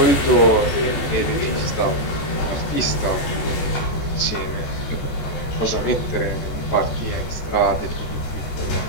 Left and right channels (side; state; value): right; late; 14 ms